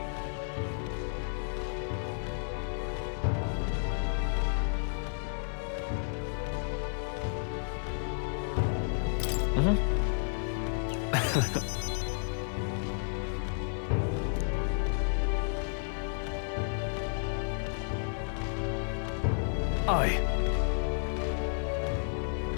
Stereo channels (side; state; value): right; silent; 56 dB below the other